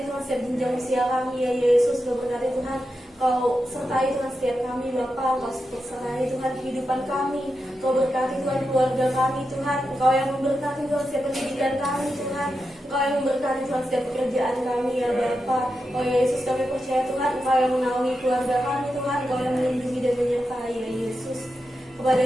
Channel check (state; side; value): normal; both; correlation 0.88